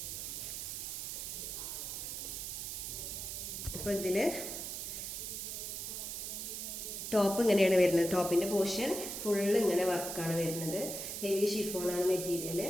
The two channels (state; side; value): noise; right; hiss, 5 dB below the sound